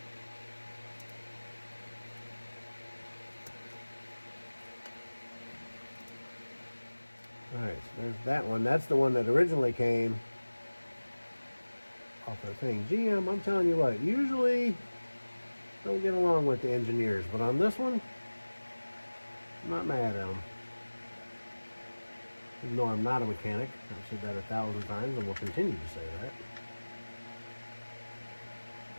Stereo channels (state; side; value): inverted; both; correlation -1.00